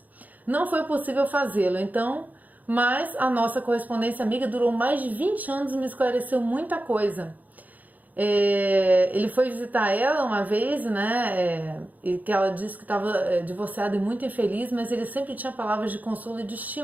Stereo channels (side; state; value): left; late; 0.080 ms